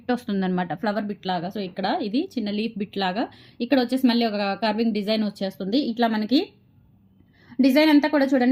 వస్తుంది అనమాట, ఫ్లవర్ బిట్ లాగా. సో ఇక్కడ ఇది చిన్న లీఫ్ బిట్ లాగా, ఇక్కడ వచ్చేసి మళ్ళీ ఒక కర్వింగ్ డిజైన్ వచ్చేస్తుంది. ఇట్లా మనకి డిజైన్ అంతా కూడా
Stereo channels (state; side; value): identical; both; correlation 1.00